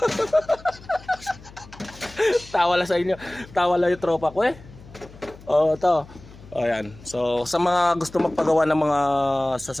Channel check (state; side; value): noise; left; hum, 20 dB below the sound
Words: tawa lang sa inyo, tawa lang yung tropa ko to. Ayan. So sa mga gusto magpagawa ng mga